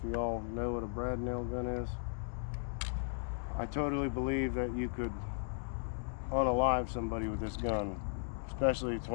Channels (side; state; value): right; silent; digital silence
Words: you all know what a brad nail gun is. I totally believe that you could unalive somebody with this gun, especially